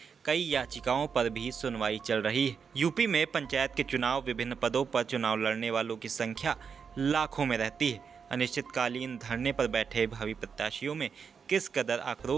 कई याचिकाओं पर भी सुनवाई चल रही है। यूपी में पंचायत के चुनाव, विभिन्न पदों पर चुनाव लड़ने वालों की संख्या लाखों में रहती है। अनिश्चितकालीन धरने पर बैठे भावी प्रत्याशियों में किस कदर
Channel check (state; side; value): quieter; left; 6.3 dB